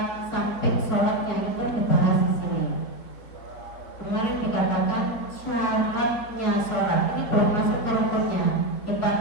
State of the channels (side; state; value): right; late; 4.4 ms